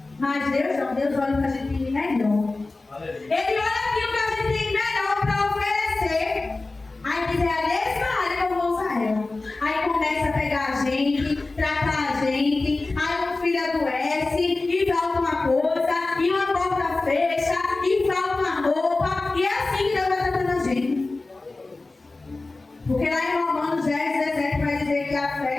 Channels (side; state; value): right; quieter; 3.3 dB